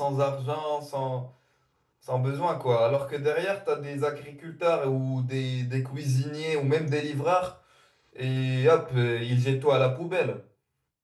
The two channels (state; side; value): identical; both; correlation 1.00